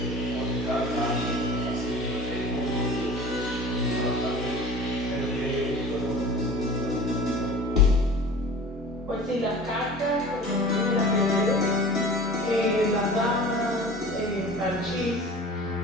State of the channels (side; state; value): both; normal; correlation 0.40